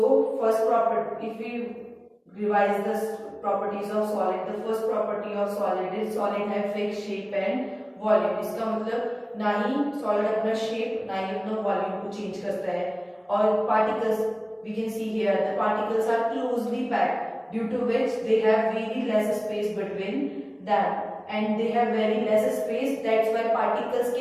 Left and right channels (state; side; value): identical; both; correlation 1.00